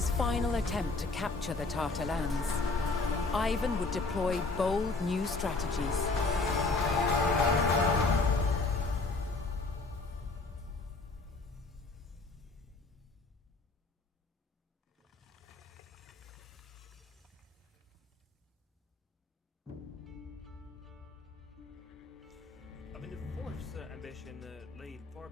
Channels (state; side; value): quieter; right; 3.7 dB